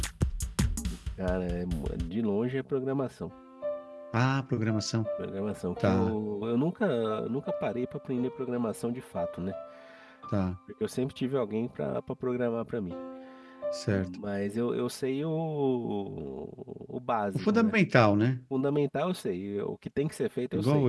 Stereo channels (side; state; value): both; identical; correlation 1.00